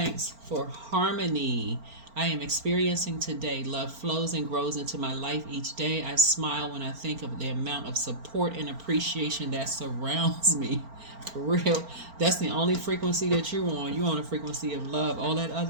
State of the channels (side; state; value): left; late; 4.4 ms